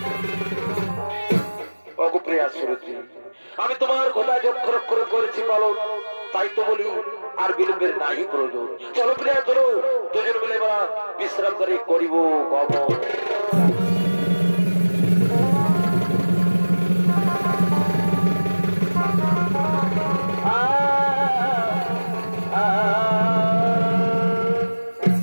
অগপ্রিয়া সুরজি, আমি তোমার কথা যক্ষর করে করেছি পালন, তাই তো বলি আর বিলম্বের নাহি প্রয়োজন। চলো প্রিয়া চলো, দুজন মিলে বিশ্রাম করে করিব গমন।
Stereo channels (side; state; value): both; inverted; correlation -1.00